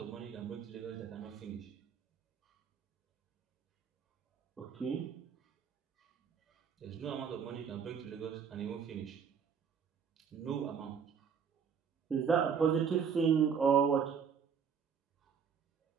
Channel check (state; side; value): quieter; left; 6.9 dB